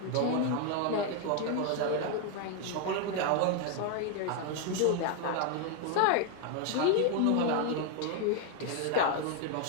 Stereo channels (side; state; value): both; different; correlation 0.01